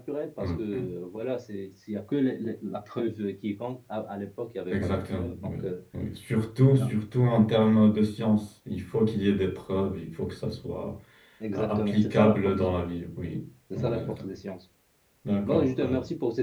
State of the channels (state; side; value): identical; both; correlation 1.00